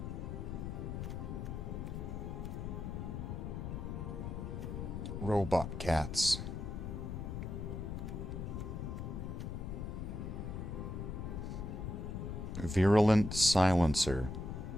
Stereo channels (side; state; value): left; noise; rumble, 5 dB below the sound